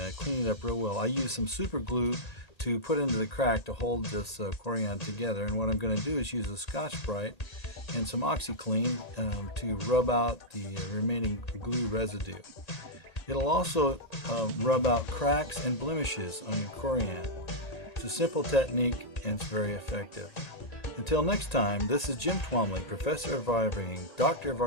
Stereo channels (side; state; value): right; late; 1.8 ms